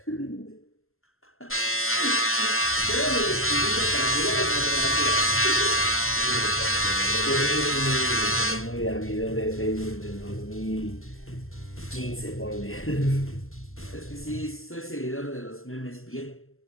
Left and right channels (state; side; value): late; right; 0.62 ms